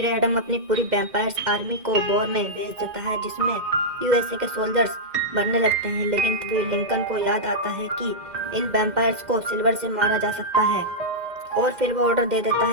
एडम अपनी पूरी वैम्पायर्स आर्मी को वॉर में भेज देता है, जिसमें यूएसए के सोल्जर्स मरने लगते हैं। लेकिन फिर लिंकन को याद आता है कि इन वैम्पायर्स को सिल्वर से मारा जा सकता है, और फिर वो ऑर्डर दे देता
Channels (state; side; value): late; left; 2.1 ms